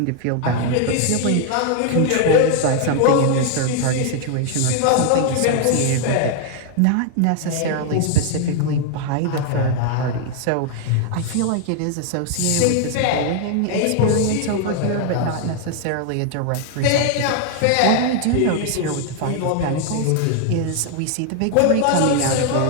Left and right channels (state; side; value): different; both; correlation 0.00